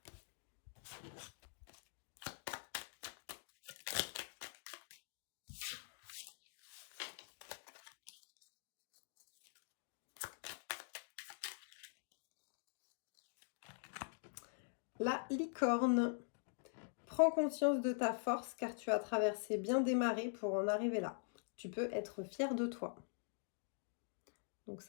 La licorne. Prends conscience de ta force car tu as traversé bien des marées pour en arriver là. Tu peux être fier de toi. Donc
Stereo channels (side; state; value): right; silent; digital silence